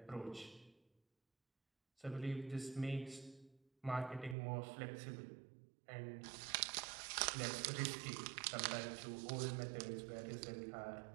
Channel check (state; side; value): drops out; left; at 4.4 s